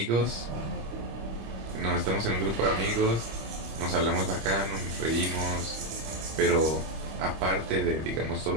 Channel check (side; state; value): left; late; 26 ms